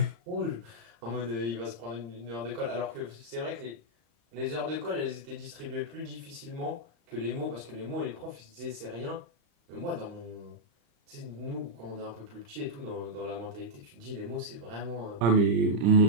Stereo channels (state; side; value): late; left; 35 ms